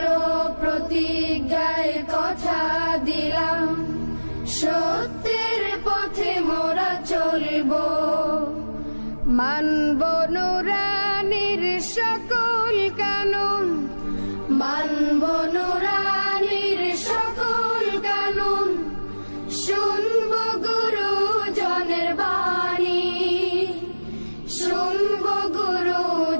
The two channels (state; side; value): inverted; both; correlation -1.00